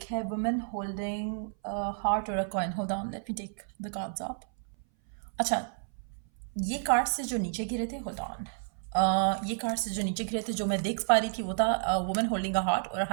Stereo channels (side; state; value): left; silent; 57 dB below the other